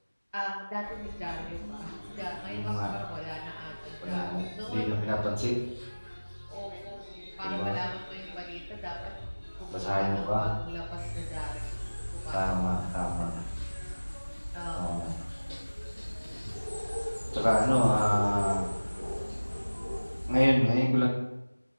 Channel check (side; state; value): both; inverted; correlation -1.00